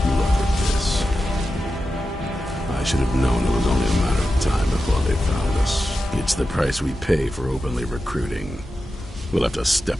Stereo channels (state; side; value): normal; both; correlation 0.91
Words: Look at this. I should have known it was only a matter of time before they found us. It's the price we pay for openly recruiting. We'll have to